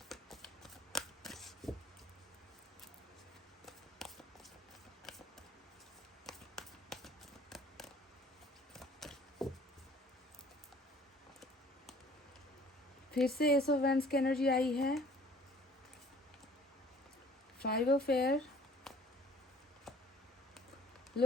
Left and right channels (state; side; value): normal; both; correlation 0.53